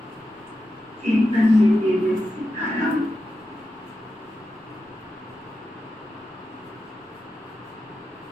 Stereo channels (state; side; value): normal; both; correlation 0.89